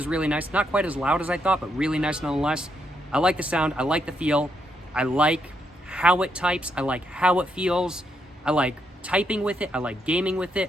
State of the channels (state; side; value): normal; both; correlation 0.78